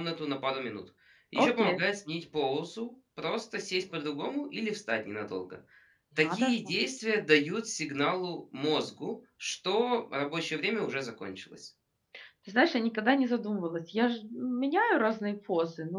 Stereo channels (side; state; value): both; identical; correlation 1.00